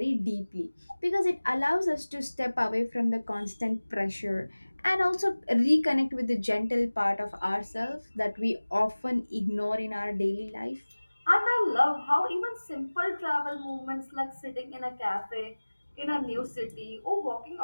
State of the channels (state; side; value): inverted; both; correlation -1.00